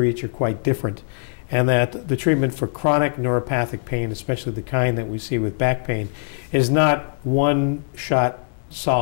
each are quite different, and that the treatment for chronic neuropathic pain, especially the kind that we see with back pain, is not one shot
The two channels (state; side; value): silent; right; 64 dB below the other